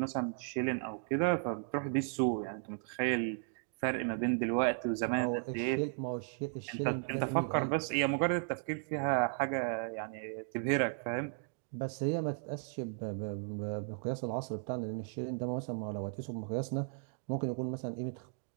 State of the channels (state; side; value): silent; left; 54 dB below the other